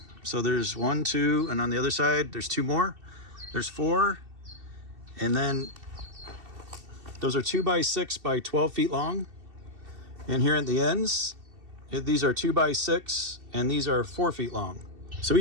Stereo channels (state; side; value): late; left; 2.7 ms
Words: So there's 1, 2, and on the other side, there's 2 more. There's 4. And then those are 2x6 by 12 feet long. And here at the ends, these are 2x6, and these are 4 feet long. So